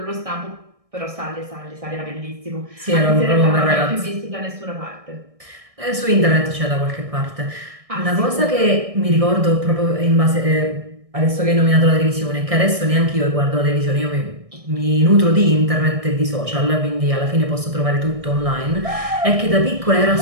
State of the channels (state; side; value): late; left; 1.6 ms